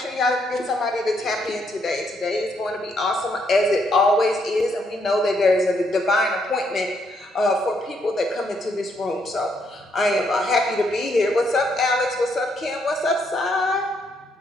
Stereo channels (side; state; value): both; normal; correlation 0.74